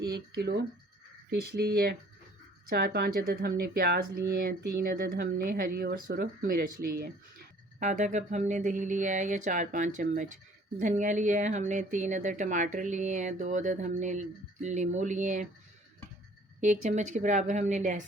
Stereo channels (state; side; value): normal; both; correlation 0.55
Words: 1 किलो फ़िश ली है, 4-5 अदद हमने प्याज लिए हैं, 3 अदद हमने हरी और सुरख मिर्च ली है, आधा कप हमने दही लिया है या 4-5 चम्मच धनिया लिया है हमने, 3 अदद टमाटर लिए हैं, 2 अदद हमने नींबू लिए हैं, 1 चम्मच के बराबर हमने